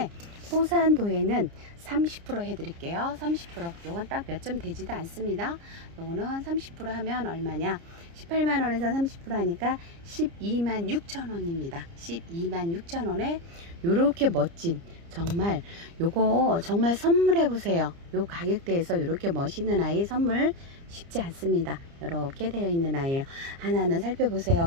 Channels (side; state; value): left; late; 29 ms